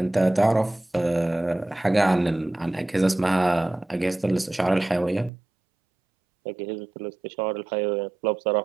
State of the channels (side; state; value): left; drops out; at 5.3 s